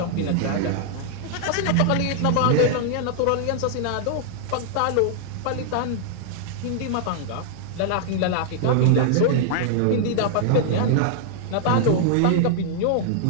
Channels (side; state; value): both; different; correlation 0.00